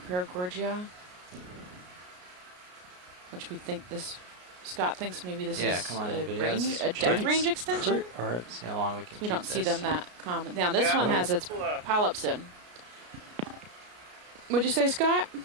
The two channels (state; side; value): late; left; 33 ms